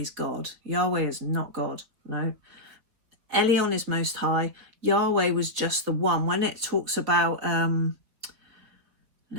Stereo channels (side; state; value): left; late; 3.9 ms